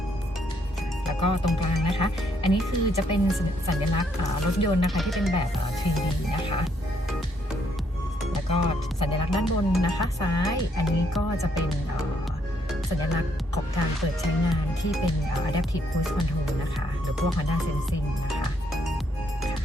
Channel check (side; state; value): both; normal; correlation 0.72